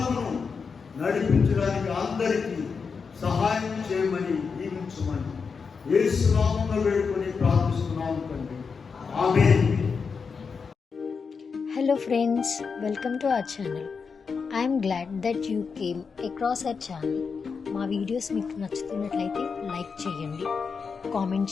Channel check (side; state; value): right; quieter; 5.4 dB